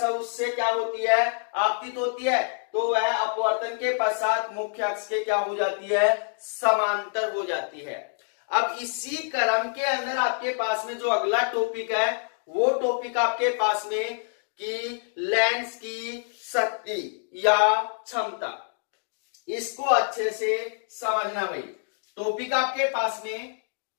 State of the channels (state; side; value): silent; right; 60 dB below the other